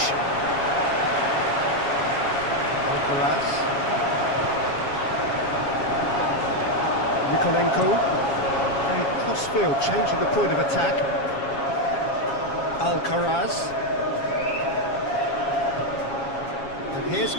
Alcaraz. Mikolenko. Cross-field, changing the point of attack. Alcaraz. And here's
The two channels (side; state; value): right; late; 7.3 ms